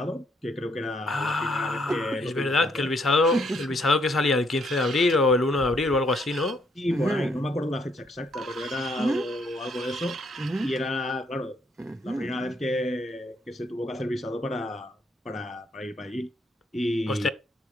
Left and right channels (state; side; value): normal; both; correlation 0.71